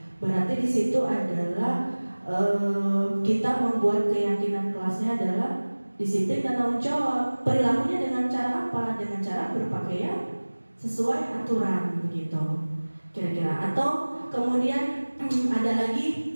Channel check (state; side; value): inverted; both; correlation -1.00